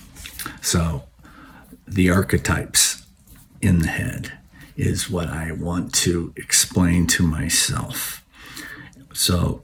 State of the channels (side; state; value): both; identical; correlation 1.00